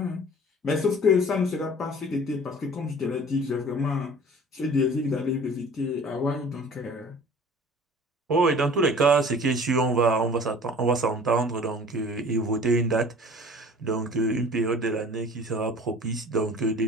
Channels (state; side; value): normal; both; correlation 0.46